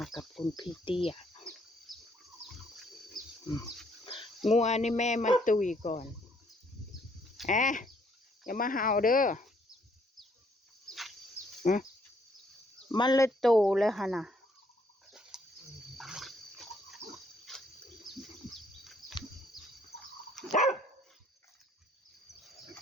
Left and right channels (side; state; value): both; normal; correlation 0.67